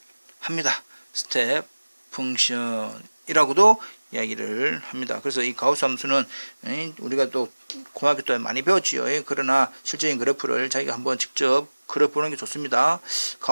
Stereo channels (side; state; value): both; inverted; correlation -1.00